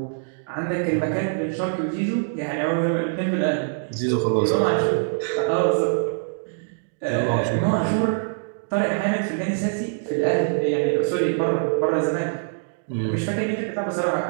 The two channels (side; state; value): left; silent; digital silence